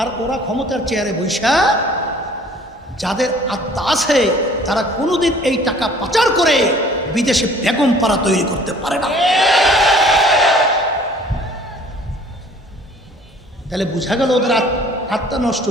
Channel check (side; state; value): both; normal; correlation 0.53